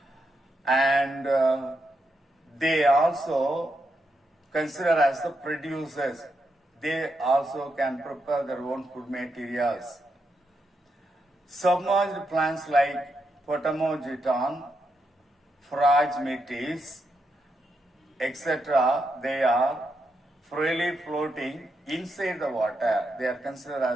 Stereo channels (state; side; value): normal; both; correlation 0.83